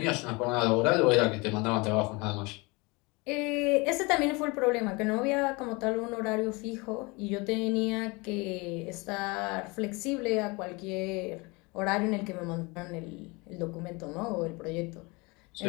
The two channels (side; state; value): right; quieter; 26.6 dB